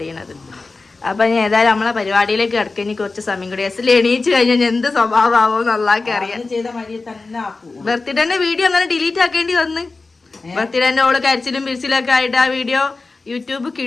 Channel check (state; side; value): quieter; right; 3.8 dB